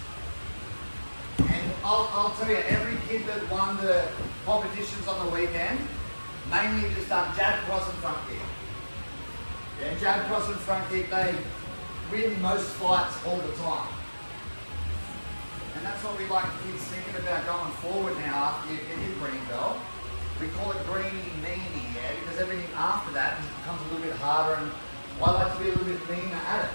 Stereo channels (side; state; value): both; inverted; correlation -1.00